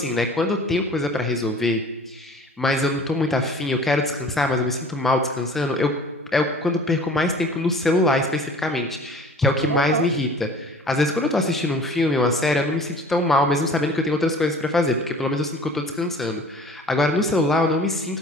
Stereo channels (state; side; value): normal; both; correlation 0.46